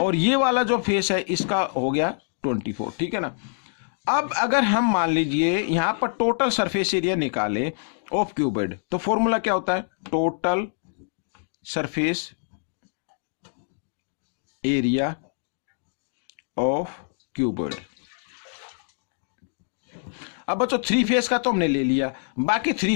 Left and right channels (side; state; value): right; silent; digital silence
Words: और ये वाला जो फेस है इसका हो गया 24, ठीक है ना। अब अगर हम मान लीजिए यहां पर टोटल सरफेस एरिया निकाले ऑफ क्यूबॉइड, तो फॉर्मूला क्या होता है, total surface area of cuboid. अब बच्चों 3 फेस का तो हमने ले लिया, बाकी